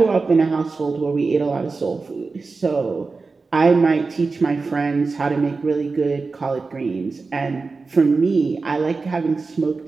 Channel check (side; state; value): left; quieter; 4.1 dB